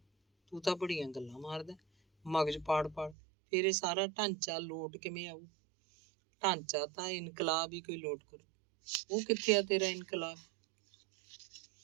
ਤੂੰ ਤਾਂ ਬੜੀਆਂ ਗੱਲਾਂ ਮਾਰਦਾ, ਮਗਜ ਪਾੜ ਫਿਰ ਇਹ ਸਾਰਾ ਢਾਂਚਾ ਲੋਟ ਕਿਵੇਂ ਆਊ? ਢਾਂਚਾ ਤਾਂ ਇਨਕਲਾਬ ਹੀ ਕੋਈ ਲੋਟ ਕਰੂ। ਉਹ ਕਿੱਥੇ ਆ ਤੇਰਾ ਇਨਕਲਾਬ?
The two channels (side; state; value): left; drops out; at 3.2 s